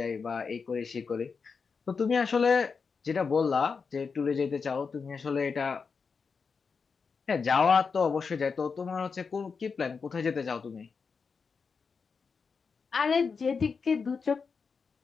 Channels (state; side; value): quieter; right; 5.3 dB